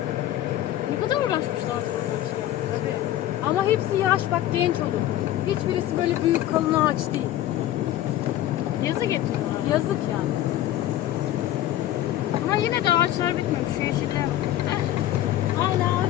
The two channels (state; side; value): quieter; right; 13.4 dB